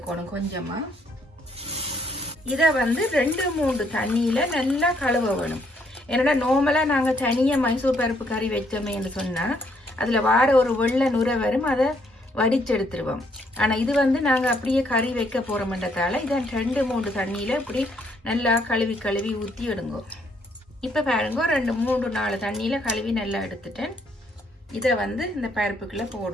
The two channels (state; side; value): normal; both; correlation 0.69